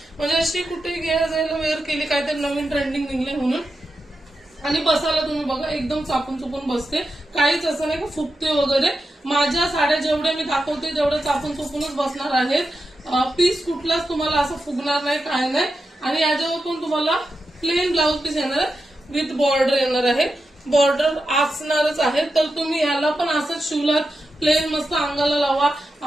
म्हणजे अशी कुठे घ्यायला जायला वेअर केली, काहीतरी नवीन ट्रेंडिंग निघले म्हणून। आणि बसायला तुम्ही बघा एकदम चापून चुपून बसते, काहीच असं नाही का फुगते वगैरे। माझ्या साड्या जेवढ्या मी दाखवते तेवढ्या चापून चुपूनच बसणार आहेत, पीस कुठलाच तुम्हाला असं फुगणार नाही, काय नाही। आणि याच्यावर पण तुम्हाला प्लेन ब्लाऊज पीस येणार आहे, विथ बॉर्डर येणार आहे, बॉर्डर असणारच आहे। तर तुम्ही याला पण असंच शिवलात, प्लेन मस्त अंगाला लावा,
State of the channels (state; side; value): normal; both; correlation 0.89